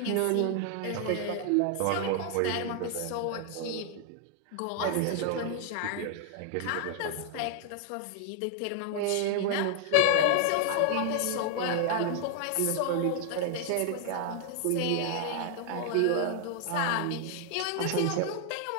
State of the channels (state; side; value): different; both; correlation 0.00